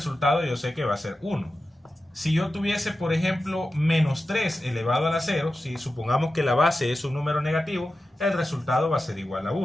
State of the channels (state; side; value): normal; both; correlation 0.92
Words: yo sé que va a ser 1. Si yo tuviese por ejemplo menos 3 elevado a la 0, si supongamos que la base es un número negativo, el resultado va a ser igual a